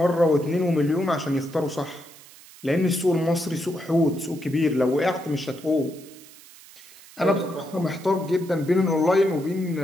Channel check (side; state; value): right; noise; hiss, 21 dB below the sound